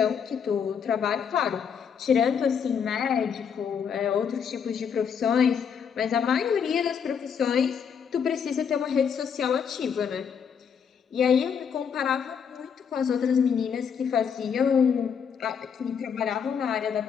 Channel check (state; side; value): quieter; right; 7.1 dB